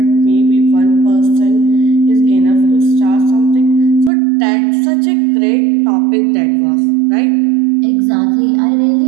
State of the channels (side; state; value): left; drops out; at 4.1 s